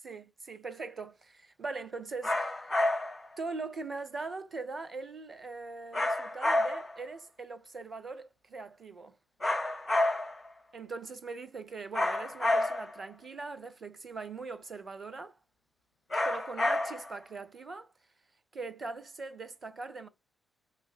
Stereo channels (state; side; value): normal; both; correlation 0.89